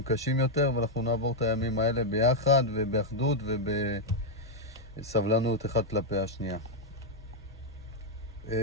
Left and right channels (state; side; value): normal; both; correlation -0.01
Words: קשים יותר, ואנחנו נעבור את הימים האלה ביחד ובאחדות ובסבלנות אחד כלפי השנייה.